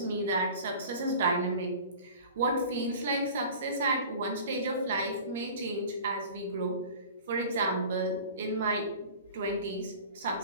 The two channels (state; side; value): inverted; both; correlation -0.40